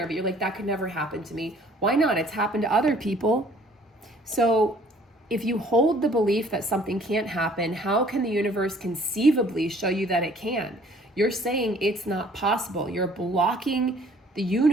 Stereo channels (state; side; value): normal; both; correlation 0.56